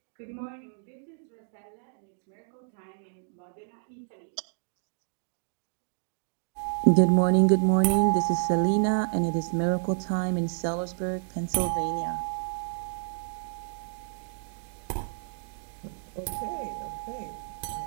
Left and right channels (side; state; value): left; silent; digital silence